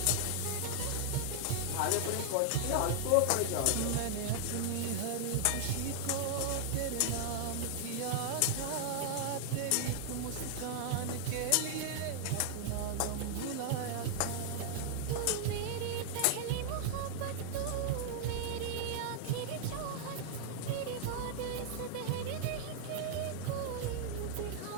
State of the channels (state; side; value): different; both; correlation -0.01